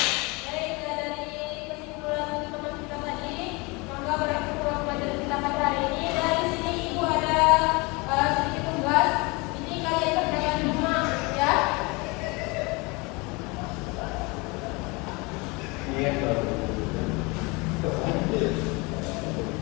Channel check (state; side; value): quieter; right; 26.9 dB